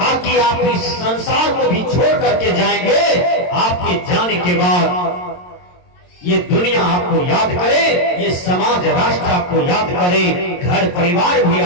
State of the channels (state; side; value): late; right; 22 ms